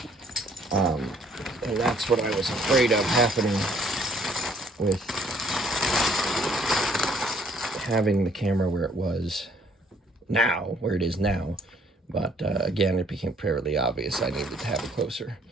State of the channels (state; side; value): normal; both; correlation 0.63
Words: And that's what I was afraid of happening with having the camera where it is now. But again, it became fairly obvious I needed to have it closer.